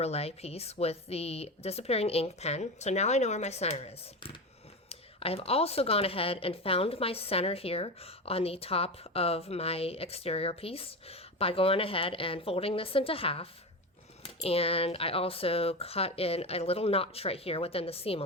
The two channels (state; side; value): normal; both; correlation 0.21